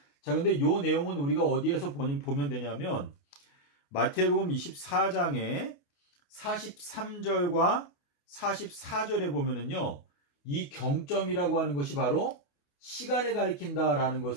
자, 근데 요 내용은 우리가 어디에서 보면 되냐면 마태복음 24장에 43절과 44절에 보면은요, 이 경점이라고 하는 것이 바로 시간을 가리킨다라는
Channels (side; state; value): right; late; 28 ms